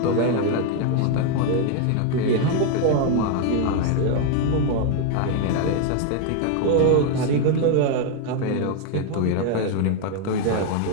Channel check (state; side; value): different; both; correlation 0.01